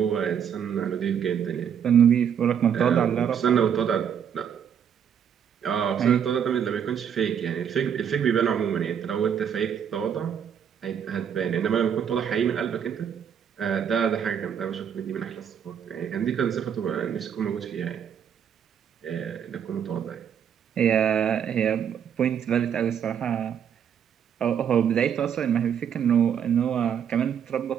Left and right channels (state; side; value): quieter; left; 8.3 dB